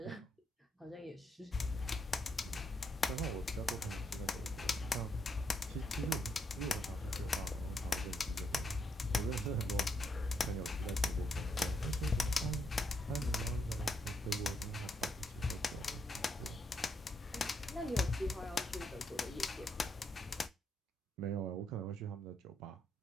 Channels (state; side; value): normal; both; correlation 0.78